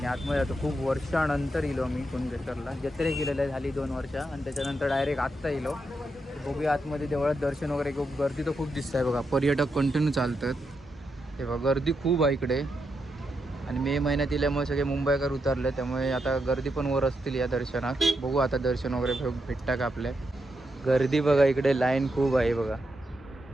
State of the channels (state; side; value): normal; both; correlation 0.83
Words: आतमध्ये जातो. खूप वर्षानंतर येलो मी कुणकेश्वरला. जत्रे गेलेलं झाली 2 वर्ष आणि त्याच्यानंतर डायरेक्ट आत्ता येलो. बघूया आतमध्ये देवळात दर्शन वगैरे खूप गर्दी तर खूप दिसत आहे बघा. पर्यटक कंटिन्यू चालतात. हे बघा गर्दी खूप आहे इकडे आणि मे महिन्यात इल्यामुळे सगळे मुंबईकर उतरले त्यामुळे आता गर्दी पण वर असतील या दर्शनात. बघू आता दर्शन वगैरे भेटता का आपल्या. गर्दी बघा इकडे लाईन खूप आहे बघा.